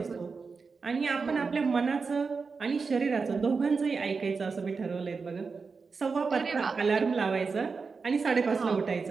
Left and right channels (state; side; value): quieter; left; 4.8 dB